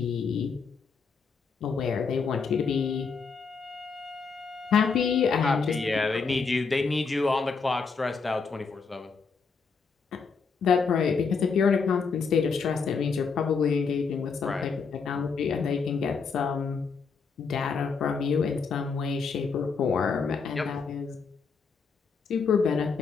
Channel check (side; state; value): right; quieter; 5.2 dB